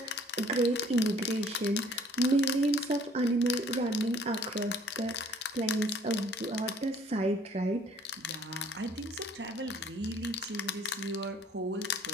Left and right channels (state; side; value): normal; both; correlation 0.58